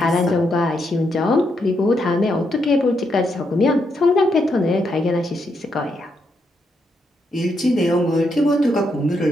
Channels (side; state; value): both; normal; correlation 0.79